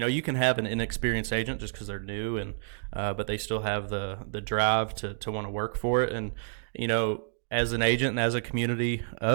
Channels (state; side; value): silent; left; digital silence